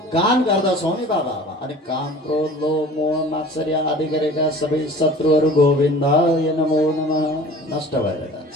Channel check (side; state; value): both; normal; correlation 0.44